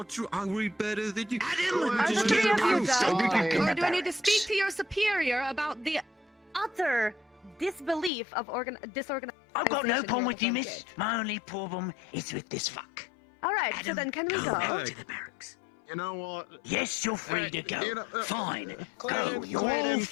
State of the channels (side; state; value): right; drops out; at 8.1 s